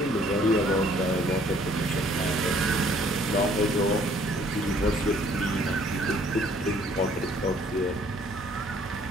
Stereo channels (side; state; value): both; normal; correlation 0.60